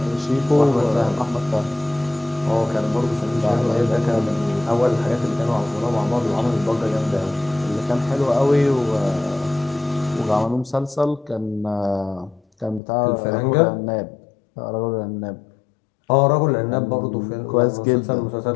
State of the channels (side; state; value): right; drops out; at 12.8 s